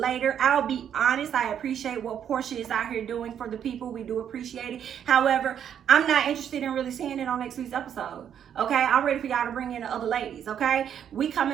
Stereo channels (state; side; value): quieter; left; 9.0 dB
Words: I'll be honest, I appreciate what Porsha is out here doing for the people. We do appreciate it. However, I'm not interested in really seeing it on next week's episode. Okay, I'm ready for y'all to bring in the other ladies. Okay, we